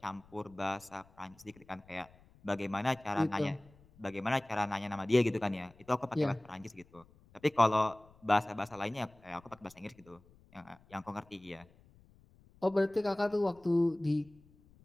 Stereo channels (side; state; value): left; noise; rumble, 27 dB below the sound